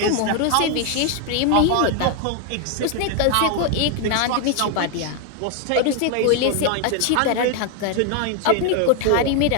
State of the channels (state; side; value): different; both; correlation 0.01